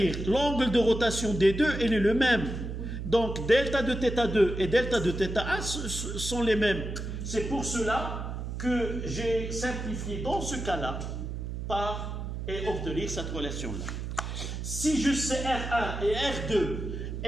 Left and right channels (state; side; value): noise; right; hum, 5 dB below the sound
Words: l'angle de rotation des deux, il est le même. Donc, delta de θ2 et delta de θ1 sont les mêmes. C'est pour cela que j'ai simplifié dans ce cas-là et obtenir cette relation-là. Si je sais R1 et R2